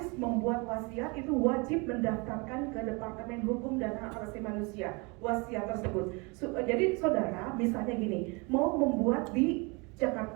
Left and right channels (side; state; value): left; quieter; 29.2 dB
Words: membuat wasiat itu wajib mendaftarkan ke Departemen Hukum dan Hak Asasi Manusia wasiat tersebut. Jadi saudara misalnya gini, mau membuat di